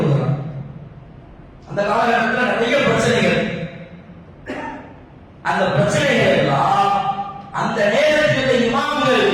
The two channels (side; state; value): both; identical; correlation 1.00